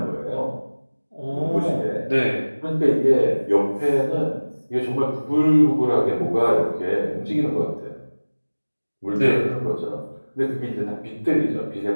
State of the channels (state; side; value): inverted; both; correlation -1.00